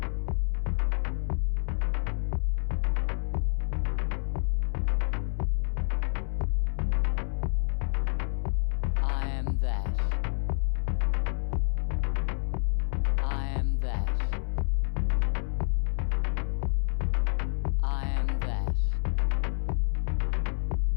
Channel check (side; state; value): right; silent; 59 dB below the other